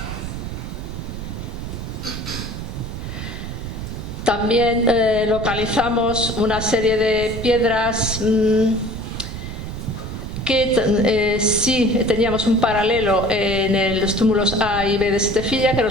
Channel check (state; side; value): noise; right; rumble, 7 dB below the sound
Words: También localizamos una serie de piedras que sí teníamos un paralelo en los túmulos A y B de Setefilla,